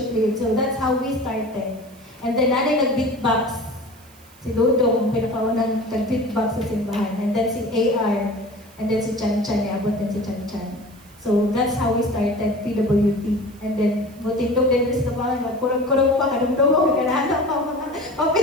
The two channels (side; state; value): right; noise; hiss, 26 dB below the sound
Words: leader. So that's how we started. And then nanay nag-beatbox. Si Dudong, pinakaunang nag-beatbox sa simbahan. And then si AR. And then si Chan Chan, iabot din si Chan Chan. So that's how we started PWT. And then, mutindog din sa tabangan, magkurang-kurang pa, kadumdumog, kanahanap pa mga